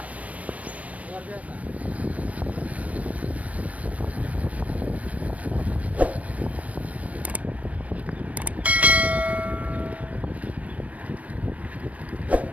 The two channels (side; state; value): left; late; 0.067 ms